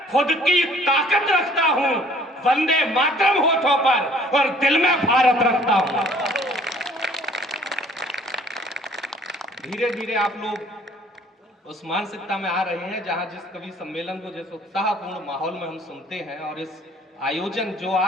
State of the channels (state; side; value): normal; both; correlation 0.56